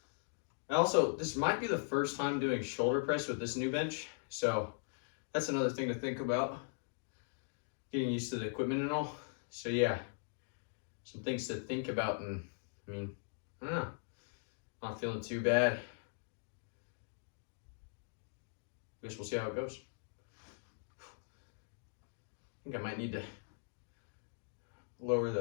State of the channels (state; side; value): silent; right; digital silence